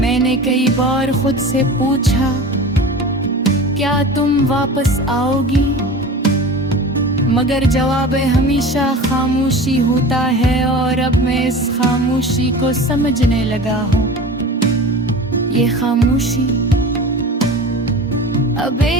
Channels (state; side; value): normal; both; correlation 0.35